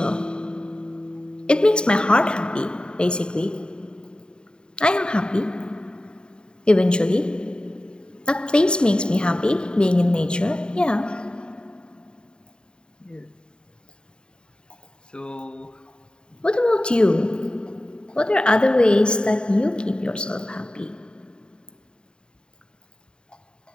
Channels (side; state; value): right; late; 0.049 ms